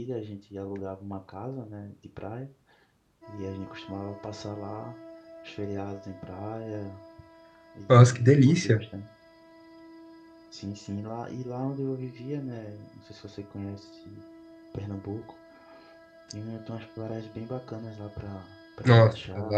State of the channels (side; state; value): both; identical; correlation 1.00